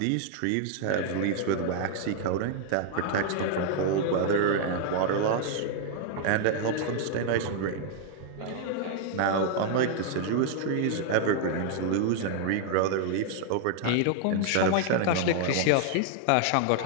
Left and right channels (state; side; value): different; both; correlation 0.00